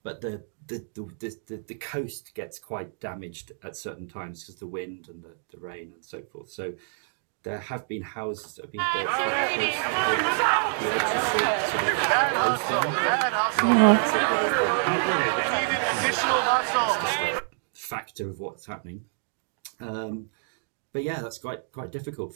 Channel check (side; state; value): left; silent; digital silence